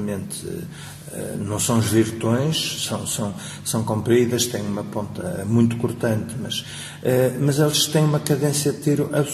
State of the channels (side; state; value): both; identical; correlation 1.00